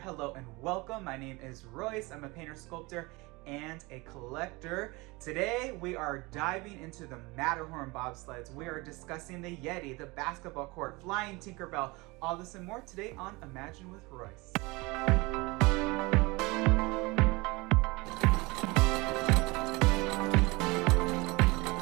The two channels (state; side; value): quieter; left; 24.3 dB